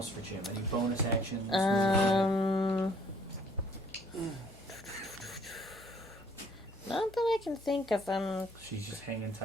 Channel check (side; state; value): both; normal; correlation 0.61